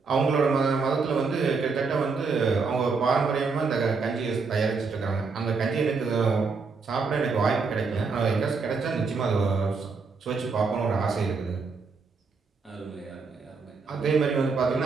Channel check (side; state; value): left; quieter; 4.7 dB